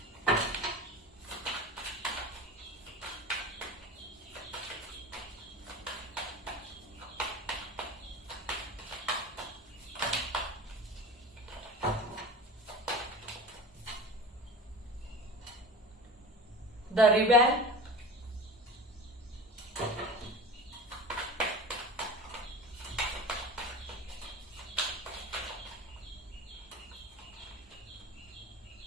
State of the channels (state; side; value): normal; both; correlation 0.33